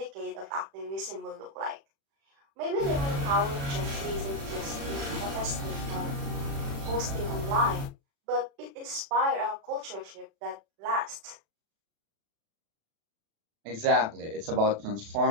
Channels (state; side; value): late; left; 36 ms